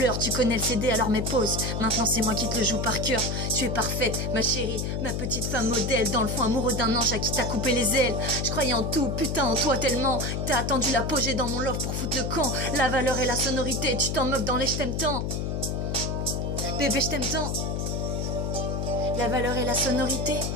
Tu connais le CD, alors mes pauses. Maintenant c'est moi qui te le joue par cœur. Tu es parfaite, ma chérie, ma petite femme modèle. Dans le fond amoureux d'un ange à qui t'as coupé les ailes. Je croyais en tout, putain en toi tellement. T'as attendu l'apogée dans mon love pour foutre le camp. La valeur et la sonorité, tu t'en moques dans les je t'aime tant. Bébé je t'aime tant. La valeur et la sonorité,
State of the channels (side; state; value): left; noise; hum, 1 dB below the sound